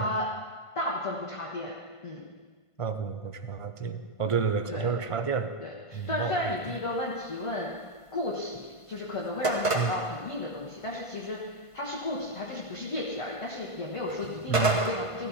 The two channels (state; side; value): late; right; 1.5 ms